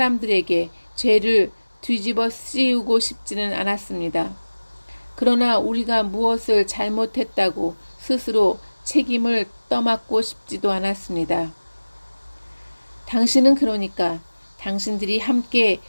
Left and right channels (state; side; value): inverted; both; correlation -1.00